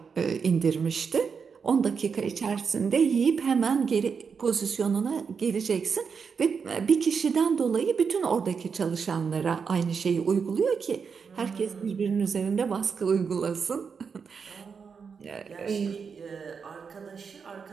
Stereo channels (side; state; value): left; quieter; 6.0 dB